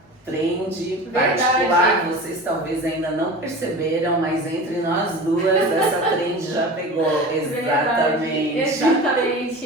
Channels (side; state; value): both; normal; correlation 0.34